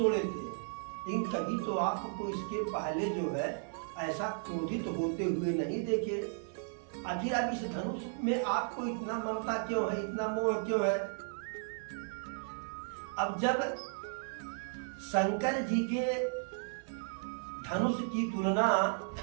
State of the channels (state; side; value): silent; left; 54 dB below the other